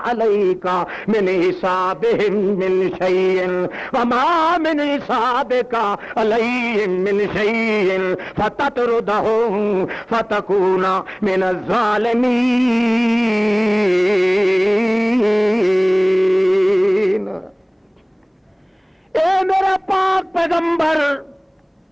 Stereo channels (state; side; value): identical; both; correlation 1.00